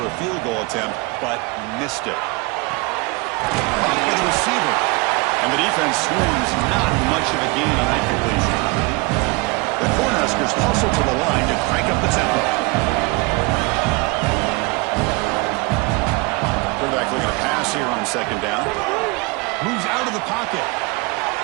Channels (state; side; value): quieter; left; 26.6 dB